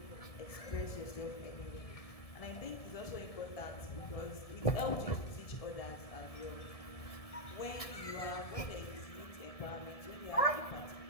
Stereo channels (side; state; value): right; late; 1.7 ms